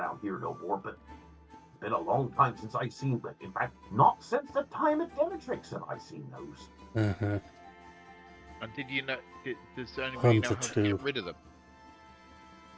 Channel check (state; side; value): identical; both; correlation 1.00